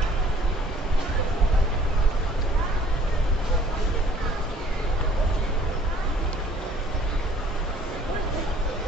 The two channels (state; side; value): normal; both; correlation 0.56